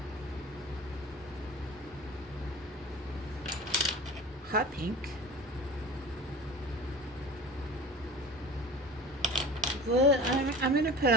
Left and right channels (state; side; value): normal; both; correlation 0.37